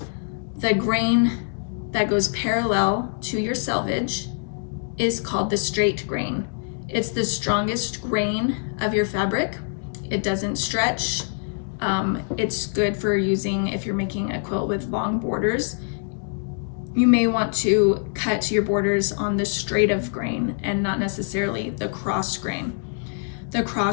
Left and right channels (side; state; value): right; silent; 60 dB below the other